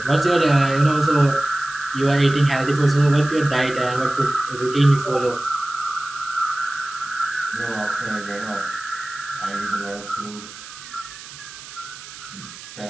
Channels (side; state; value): right; noise; hiss, 15 dB below the sound